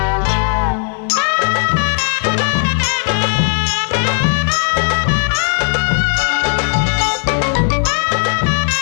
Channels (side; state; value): right; silent; 56 dB below the other